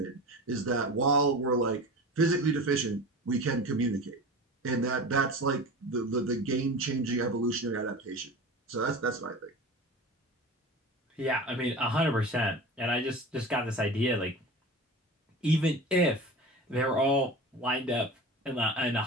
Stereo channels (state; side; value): normal; both; correlation 0.32